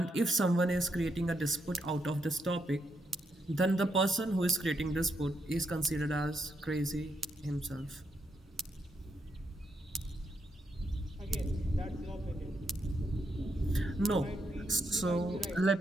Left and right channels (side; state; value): both; normal; correlation 0.80